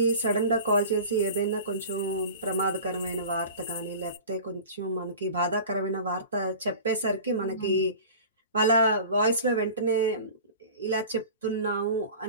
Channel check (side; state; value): both; inverted; correlation -0.39